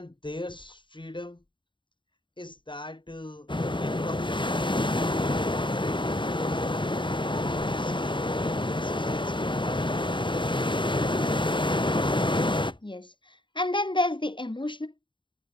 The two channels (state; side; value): late; right; 0.23 ms